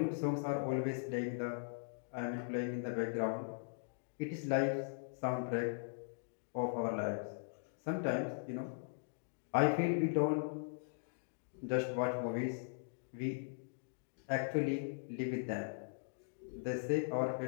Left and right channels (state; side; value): silent; right; digital silence